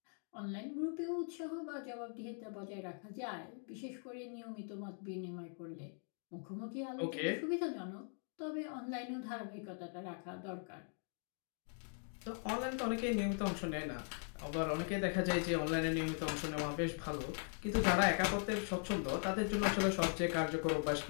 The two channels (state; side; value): silent; right; 51 dB below the other